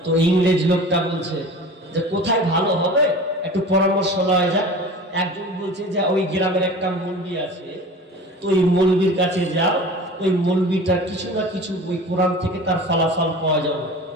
তো ইংরেজ লোকটা বলছে যে কোথায় ভালো হবে, একটু পরামর্শ লওয়া যাক। একজন বলছে যে ওই গ্রামের একটা মৌলবি আছে, তো ওই মৌলবির কাছে যাও, ওই মৌলবিটার কিছু না কিছু ওই কোরআন থেকে তার ফলাফল পাওয়া যাবে।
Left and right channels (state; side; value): normal; both; correlation 0.38